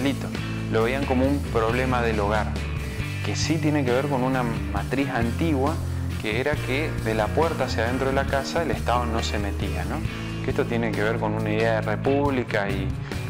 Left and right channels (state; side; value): identical; both; correlation 1.00